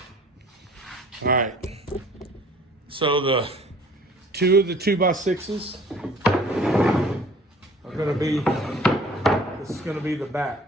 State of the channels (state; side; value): normal; both; correlation 0.51